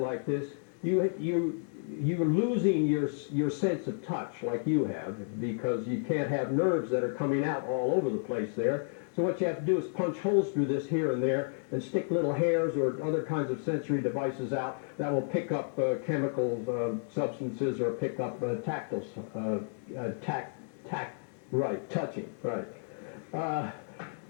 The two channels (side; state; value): right; silent; digital silence